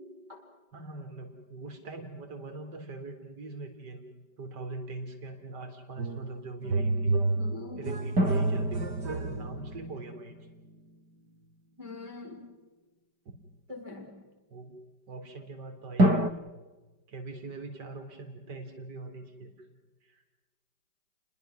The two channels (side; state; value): left; late; 5.1 ms